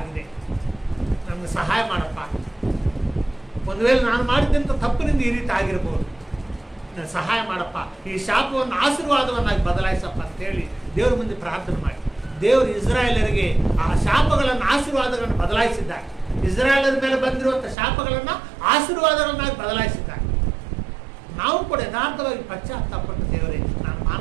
ನನಗೆ ಸಹಾಯ ಮಾಡಪ್ಪ, ಒಂದು ವೇಳೆ ನಾನು ಮಾಡಿದಂಥ ತಪ್ಪಿನಿಂದ ಈ ರೀತಿ ಆಗಿರ್ಬೋದು, ಸಹಾಯ ಮಾಡಪ್ಪ, ಈ ಶಾಪವನ್ನು ಆಶೀರ್ವಾದವನ್ನಾಗಿ ಬದಲಾಯಿಸಪ್ಪ ಅಂತೇಳಿ ದೇವ್ರ ಮುಂದೆ ಪ್ರಾರ್ಥನೆ ಮಾಡಿ. ದೇವರು ಇಸ್ರಾಯೇಲರಿಗೆ ಆ ಶಾಪಗಳನ್ನು ಆಶೀರ್ವಾದಗಳನ್ನು ಬದಲಾಯಿಸಿದ್ದಾರೆ. ಇಸ್ರಾಯೇಲರ ಮೇಲೆ ಬಂದಿರುವಂಥ ಶಾಪಗಳನ್ನು ಆಶೀರ್ವಾದಗಳನ್ನಾಗಿ ಬದಲಾಯಿಸಿದ್ದಾರೆ. ನಾವು ಕೂಡ ಯಥಾರ್ಥವಾಗಿ ಪಶ್ಚಾತ್ತಾಪಟ್ಟು ದೇವರೇ ನಾನು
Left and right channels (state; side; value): drops out; left; at 17.8 s